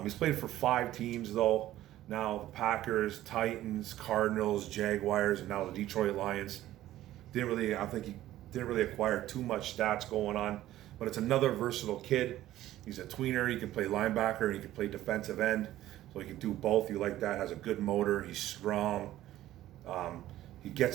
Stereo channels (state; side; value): quieter; left; 14.2 dB